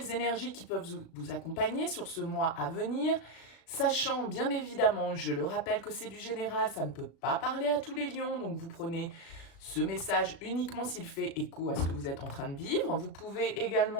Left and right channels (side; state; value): right; late; 36 ms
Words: énergies qui peuvent vous accompagner sur ce mois à venir, sachant bien évidemment, je le rappelle que c'est du général, ça ne peut pas parler à tous les lions, donc vous prenez ce message uniquement s'il fait écho à ce que vous êtes en train de vivre. Vous pouvez